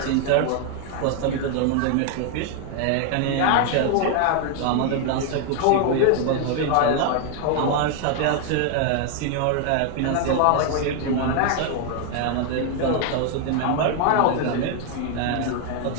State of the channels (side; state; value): both; different; correlation 0.00